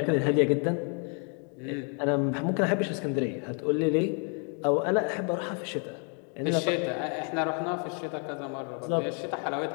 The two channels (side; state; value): right; quieter; 39.8 dB